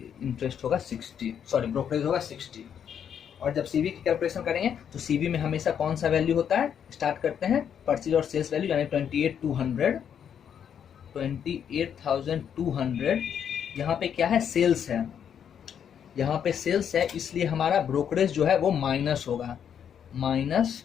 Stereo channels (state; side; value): quieter; right; 8.4 dB